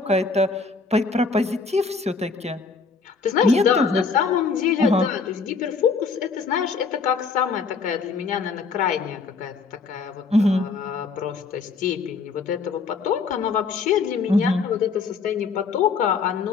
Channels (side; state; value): right; quieter; 4.7 dB